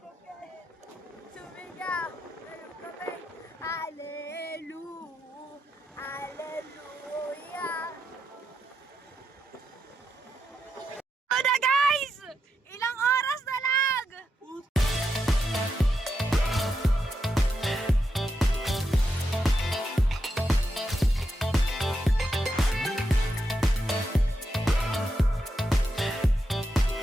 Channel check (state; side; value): normal; both; correlation 0.84